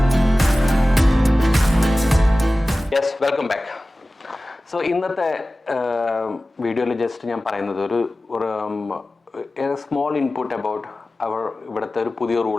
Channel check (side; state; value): both; normal; correlation 0.96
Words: Yes, welcome back. So ഇന്നത്തെ വീഡിയോയിൽ ജസ്റ്റ് ഞാൻ പറയുന്നത് ഒരു സ്മോൾ ഇൻപുട്ട് അബൌട്ട് ഇവിടുത്തെ ഒരു പുതിയ